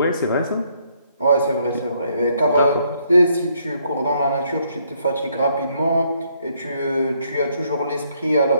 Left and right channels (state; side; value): inverted; both; correlation -0.71